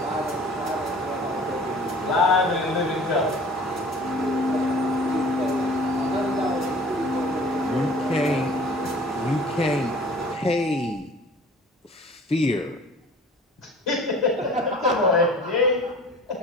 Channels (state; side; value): normal; both; correlation 0.46